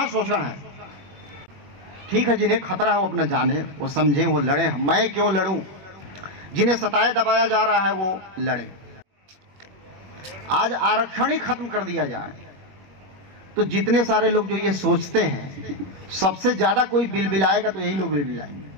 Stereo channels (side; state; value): left; late; 21 ms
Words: शोषण है। ठीक है, जिन्हें खतरा है वो अपना जाने, वो समझें, वो लड़े। मैं क्यों लड़ूं? जिन्हें सताया दबाया जा रहा है वो लड़े। आज आरक्षण ही खत्म कर दिया जाए तो जितने सारे लोग जो ये सोचते हैं, सबसे ज्यादा कोई बिलबिलाएगा तो यही लोग बिलबिलाएंगे,